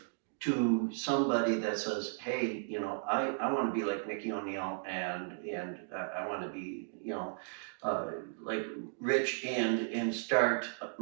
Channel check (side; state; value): left; silent; digital silence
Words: to somebody that says, hey, I want to be like Nikki O'Neill, and I want to be, like Rich, and start